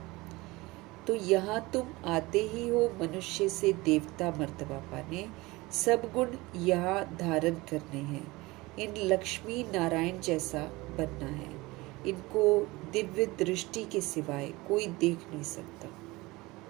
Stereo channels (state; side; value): quieter; left; 21.7 dB